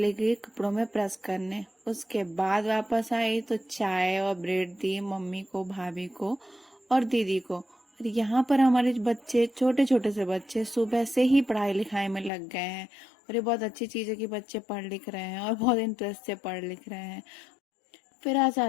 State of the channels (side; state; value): right; drops out; at 12.3 s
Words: गई कपड़ों में प्रेस करने। उसके बाद वापस आई तो चाय और ब्रेड दी मम्मी को, भाभी को और दीदी को। और यहाँ पर हमारे बच्चे, छोटे छोटे से बच्चे सुबह से ही पढ़ाई लिखाई में लग गए हैं। और ये बहुत अच्छी चीज है कि बच्चे पढ़ लिख रहे हैं और बहुत इंटरेस्ट से पढ़ लिख रहे हैं। फिर आ